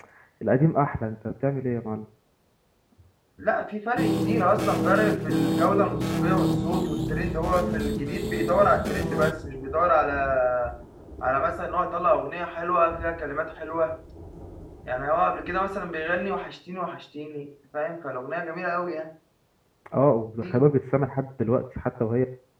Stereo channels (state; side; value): identical; both; correlation 1.00